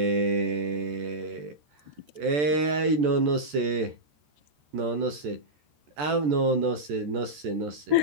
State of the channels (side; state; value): left; late; 14 ms